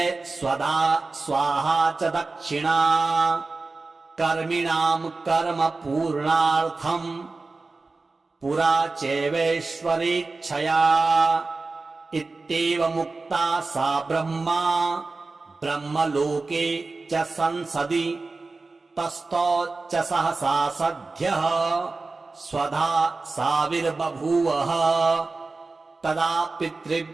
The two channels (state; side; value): quieter; left; 3.7 dB